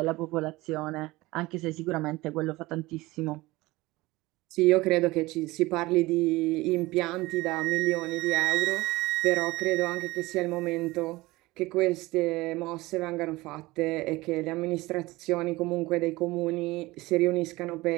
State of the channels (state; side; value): quieter; left; 20.3 dB